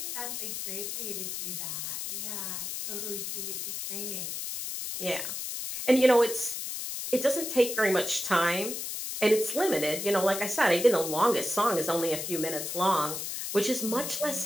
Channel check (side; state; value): left; noise; hiss, 5 dB below the sound